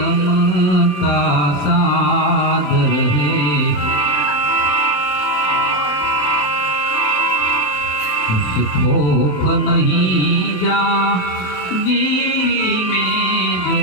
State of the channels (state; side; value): late; right; 27 ms